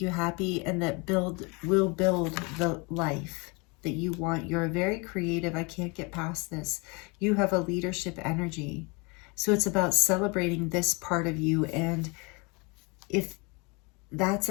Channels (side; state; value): right; quieter; 29.5 dB